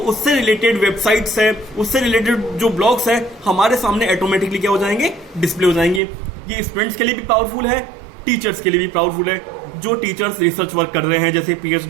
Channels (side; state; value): left; drops out; at 6.0 s